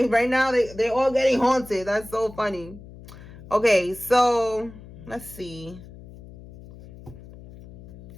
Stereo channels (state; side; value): noise; left; hum, 18 dB below the sound